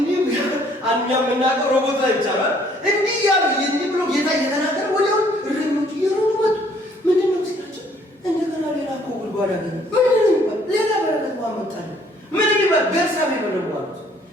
እኛ የምናውቀው ሮቦት ላይ ብቻ ነው። እንዲህ እያሉ እንዲህ ብሎ ጌታ እየተናገረ ወዲያው እረኞቹ እየሮጡ መጡ። ምንድን ነው ሲላቸው እንደገና ሌላ እኮ ጉድጓድ አገኘ። ምንድን ነው ሌላ በረከት ማመጣለ ምን ይባል ቤርሳቤህ በለው አሉት።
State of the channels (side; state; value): both; normal; correlation 0.62